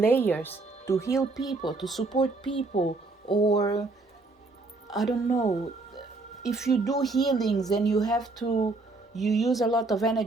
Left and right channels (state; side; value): quieter; left; 3.4 dB